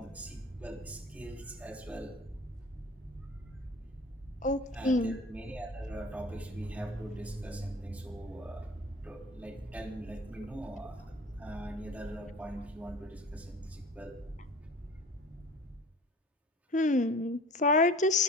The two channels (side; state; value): both; normal; correlation 0.42